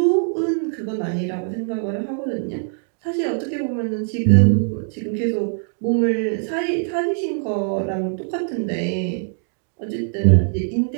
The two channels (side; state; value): left; silent; 64 dB below the other